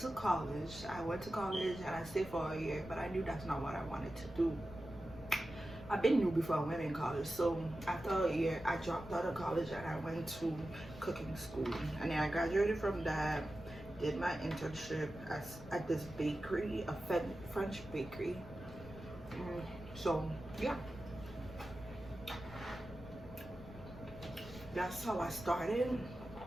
college. And I stayed for a year, but I knew that's not what I wanted to do. I've been new before I went in college. So after a year, I dropped out of college and I went to cooking school. And then I graduated from that, did my internship at this bakery, a French bakery. So yeah, that's how I started.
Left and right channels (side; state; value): left; noise; rumble, 15 dB below the sound